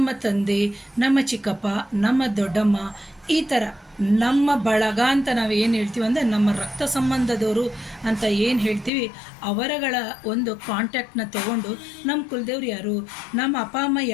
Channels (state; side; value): drops out; right; at 8.9 s